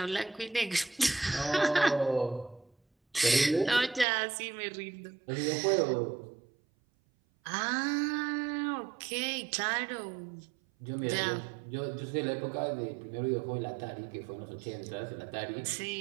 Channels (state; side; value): drops out; left; at 4.0 s